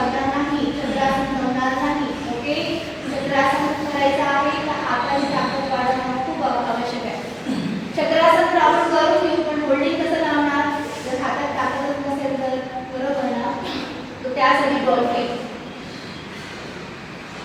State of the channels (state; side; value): identical; both; correlation 1.00